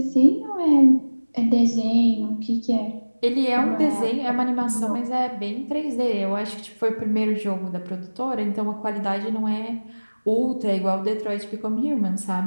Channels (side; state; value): both; inverted; correlation -1.00